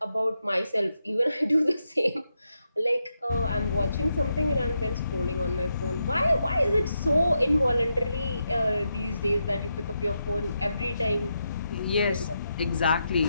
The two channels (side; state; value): both; inverted; correlation -0.84